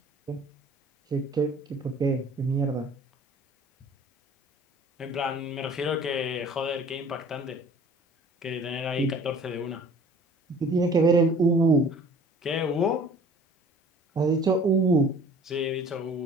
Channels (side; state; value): both; normal; correlation 0.49